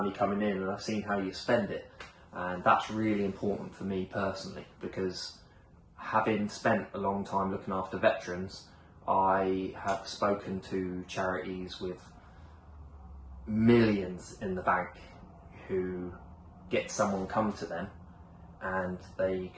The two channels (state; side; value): identical; both; correlation 1.00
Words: coming in, and I've seen how you spend it, and that's really important for me personally, because having spent a long time looking after veterans, I have spoken to charities with millions in the bank who get someone come to them and they